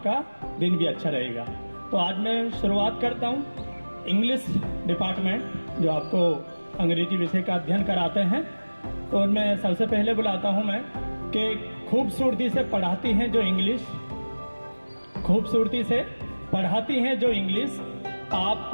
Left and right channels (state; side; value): inverted; both; correlation -1.00